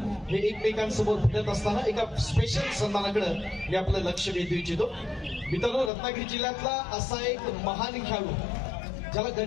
हे एकमेकांसमोर भिडत असताना एका स्पेशल सन्मानाकडे मी आपलं लक्ष वेधू इच्छितो. मित्रांनो, रत्नागिरी जिल्ह्यातला असा एक महान खेळाडू ज्याला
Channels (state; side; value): drops out; right; at 5.9 s